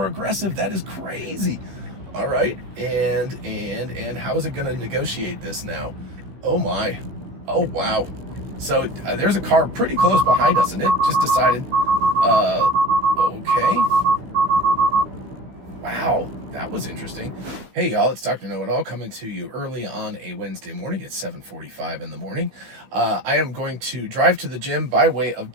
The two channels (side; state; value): left; late; 15 ms